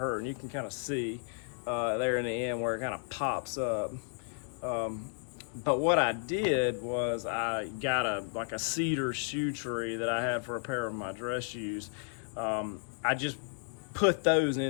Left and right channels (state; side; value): silent; right; 56 dB below the other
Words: and you can kind of see there in the end where it kind of pops up. But what I did was I got a cedar shoe tree that I have for a pair of my dress shoes. I just put those